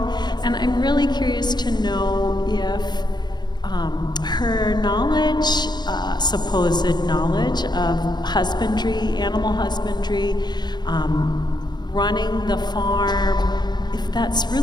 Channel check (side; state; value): right; late; 0.21 ms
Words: and I'm really curious to know if her knowledge, supposed knowledge of husbandry, animal husbandry, running the farm, if that's